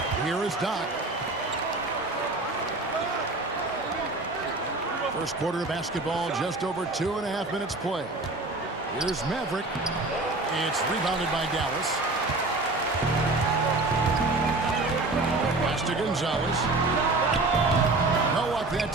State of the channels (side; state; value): left; quieter; 3.1 dB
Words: Here is Doc. First quarter of basketball, just over 2.5 minutes play. Here's Maverick. It's rebounded by Dallas. Pass to Gonzalez. No luck that